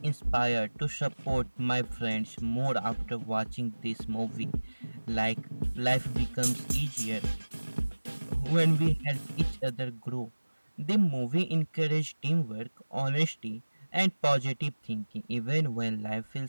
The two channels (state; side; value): inverted; both; correlation -1.00